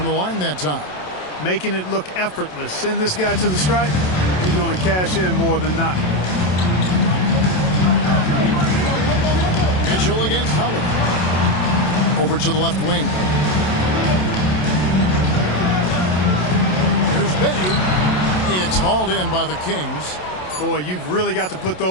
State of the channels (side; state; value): right; late; 27 ms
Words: the line that time. Making it look effortless. Send this guy to the stripe. He's going to cash in more than not. Mitchell against Holiday. Over to the left wing. Here's Bay. It's hauled in by the Kings. Boy, you've really got to put